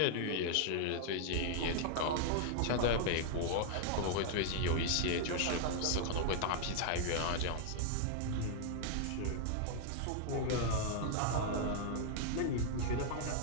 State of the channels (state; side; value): different; both; correlation 0.00